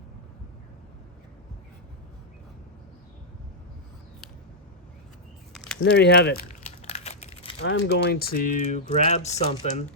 And there you have it. I'm going to grab something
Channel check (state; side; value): normal; both; correlation -0.07